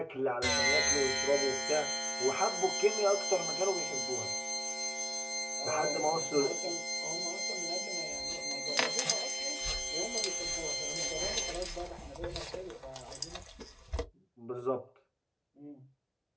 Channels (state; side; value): identical; both; correlation 1.00